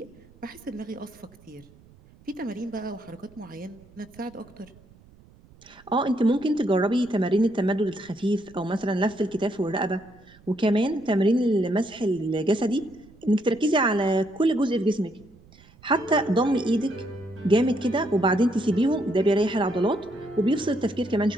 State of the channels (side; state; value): right; noise; rumble, 26 dB below the sound